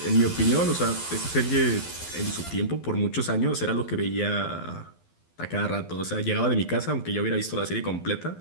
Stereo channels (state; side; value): late; right; 12 ms